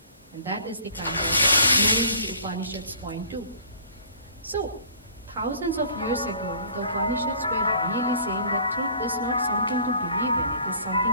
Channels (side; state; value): both; inverted; correlation -0.51